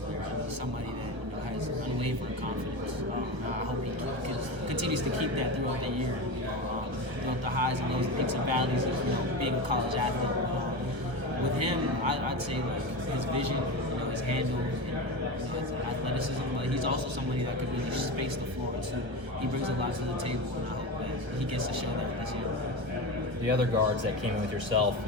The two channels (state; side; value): late; left; 1.3 ms